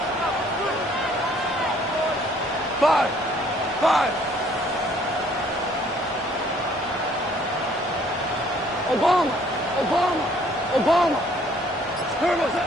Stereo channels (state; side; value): normal; both; correlation 0.60